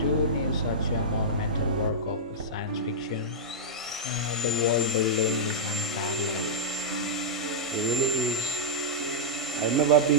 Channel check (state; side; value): normal; both; correlation -0.09